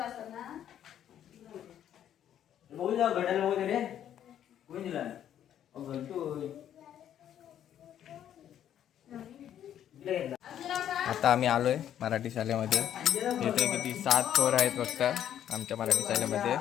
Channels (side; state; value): right; quieter; 10.4 dB